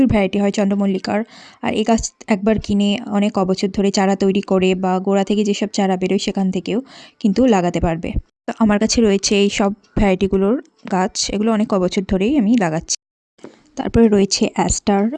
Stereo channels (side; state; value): both; identical; correlation 1.00